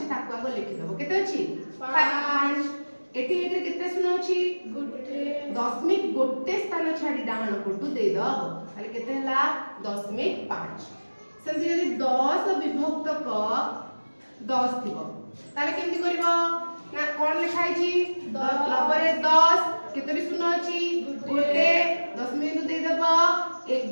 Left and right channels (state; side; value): inverted; both; correlation -1.00